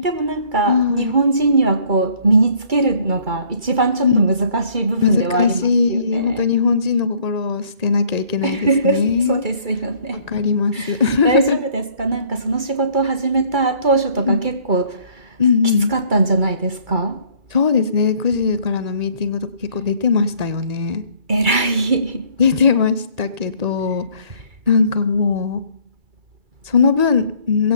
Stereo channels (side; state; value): left; late; 2.3 ms